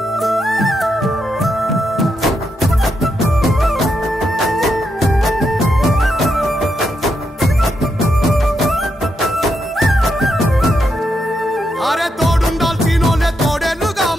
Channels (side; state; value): both; normal; correlation 0.82